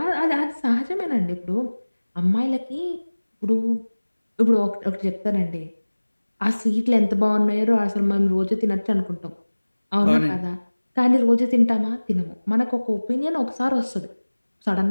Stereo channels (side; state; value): both; inverted; correlation -1.00